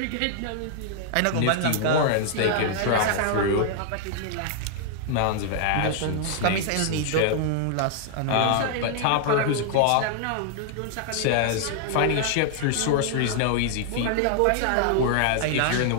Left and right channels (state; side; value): different; both; correlation 0.00